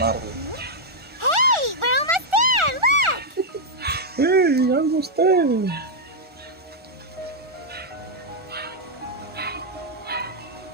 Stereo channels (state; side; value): late; left; 1.4 ms